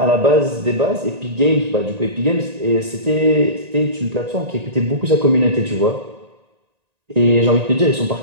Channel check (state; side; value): late; left; 1.9 ms